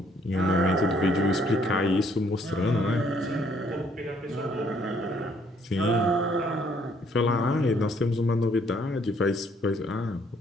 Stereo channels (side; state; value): both; normal; correlation 0.66